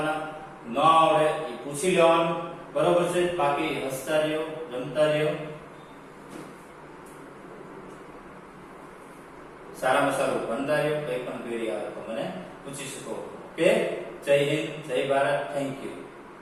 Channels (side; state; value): both; identical; correlation 1.00